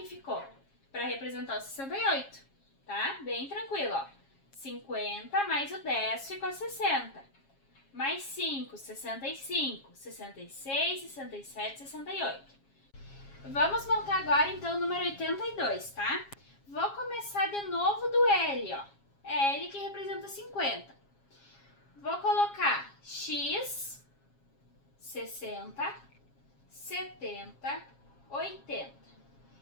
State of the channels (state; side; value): late; right; 7.3 ms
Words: ficou para representar o 68, tá? Bem tranquilo, ó. 50 mais o 10 ficou 60. Mais 5, 65, 66, 67, 68. Vamos montar agora, então, o número 82, tá? Vou começar de novo do L, ó. É L que representa 50. Vou colocar X, 60, 70, 80.